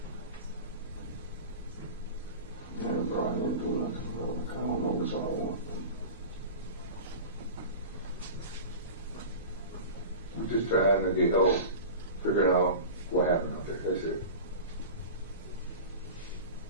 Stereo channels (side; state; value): both; inverted; correlation -0.33